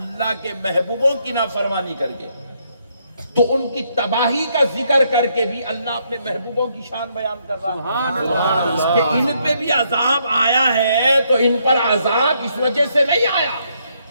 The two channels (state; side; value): inverted; both; correlation -0.74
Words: کے محبوبوں کی نافرمانی کر کے، تو ان کی تباہی کا ذکر کر کے بھی اللہ اپنے محبوبوں کی شان بیان کر رہا ہے کہ ان پہ بھی عذاب آیا ہے، تو ان پر عذاب اس وجہ سے نہیں آیا